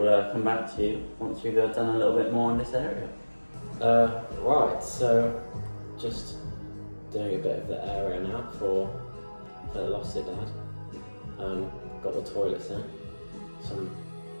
come back to you once we've done a little bit more in this area. Right, so just doing a bit of the area now for the Lost Dad. Got the toilets in, some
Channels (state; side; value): inverted; both; correlation -1.00